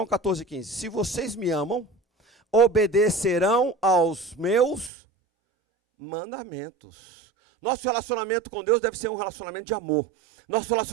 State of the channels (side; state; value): left; drops out; at 4.9 s